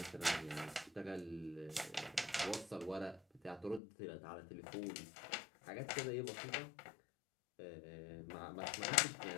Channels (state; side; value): drops out; right; at 3.8 s